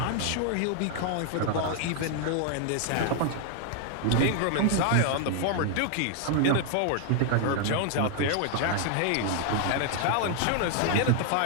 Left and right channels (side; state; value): both; different; correlation 0.00